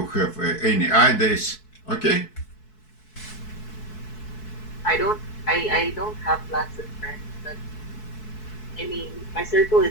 have any ideas, okay? I don't have lots of friends, but I mean, my circle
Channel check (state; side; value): late; right; 4.6 ms